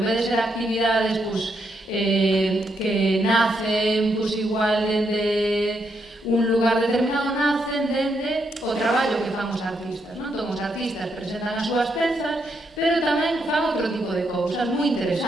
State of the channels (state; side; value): normal; both; correlation 0.79